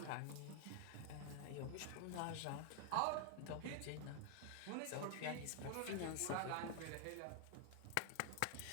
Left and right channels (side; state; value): both; different; correlation 0.00